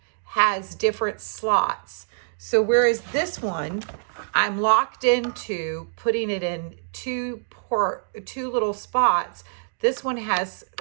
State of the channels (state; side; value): silent; left; digital silence